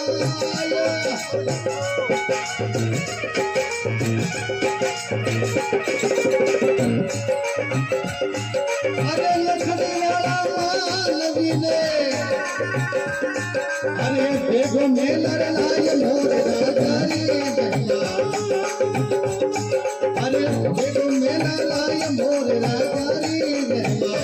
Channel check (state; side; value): identical; both; correlation 1.00